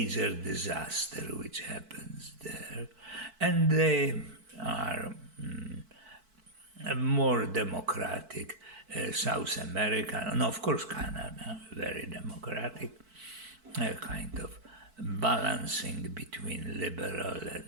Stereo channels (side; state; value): left; late; 4.5 ms